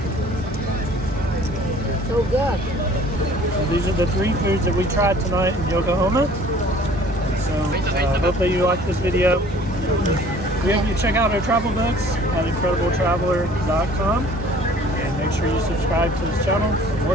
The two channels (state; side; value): normal; both; correlation 0.52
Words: So good. So these are the 3 foods that we tried tonight in Yokohama. So hopefully you liked this video. We hope you check out our travel books at incredibletraveler.com and make sure you subscribe to this channel for